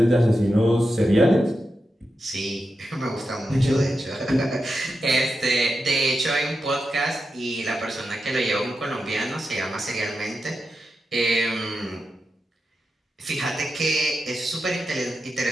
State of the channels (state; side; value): normal; both; correlation 0.89